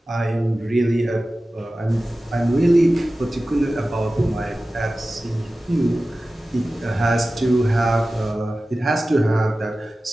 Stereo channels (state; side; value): normal; both; correlation 0.96